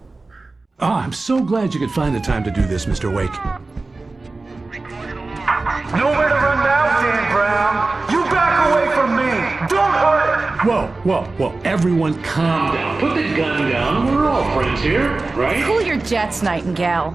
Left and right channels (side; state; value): left; quieter; 3.4 dB